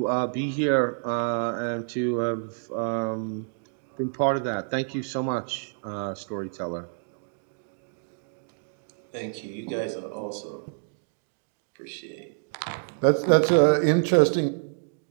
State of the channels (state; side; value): silent; left; digital silence